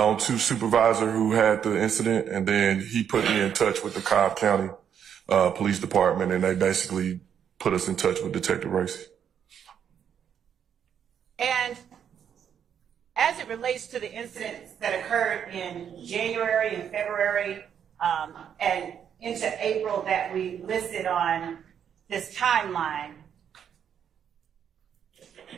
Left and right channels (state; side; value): quieter; left; 8.4 dB